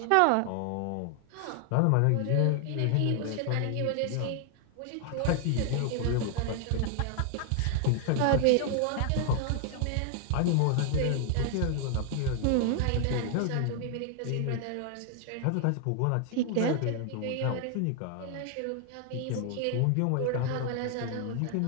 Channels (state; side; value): different; both; correlation 0.00